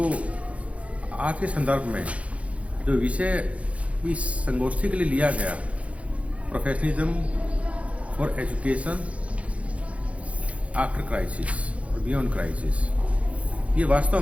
आज के संदर्भ में जो विषय इस संगोष्ठी के लिए लिया गया, professionalism for education after crisis और बियॉन्ड क्राइसिस, ये वास्तव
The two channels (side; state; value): left; late; 0.064 ms